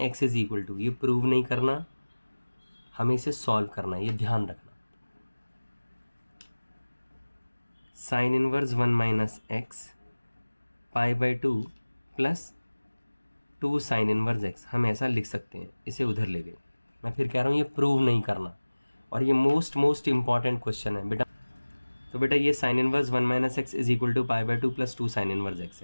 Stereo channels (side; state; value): both; inverted; correlation -1.00